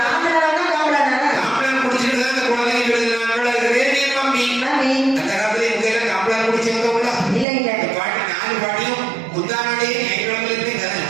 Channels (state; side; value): drops out; left; at 7.5 s